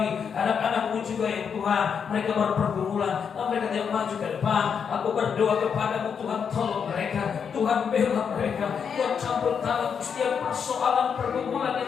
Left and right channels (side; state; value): right; quieter; 6.9 dB